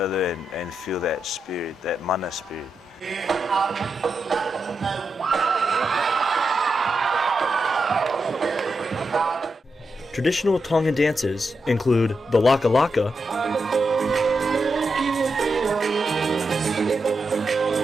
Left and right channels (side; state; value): both; normal; correlation 0.86